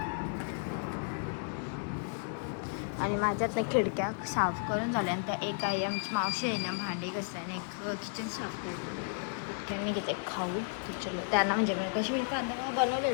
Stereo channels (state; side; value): silent; right; digital silence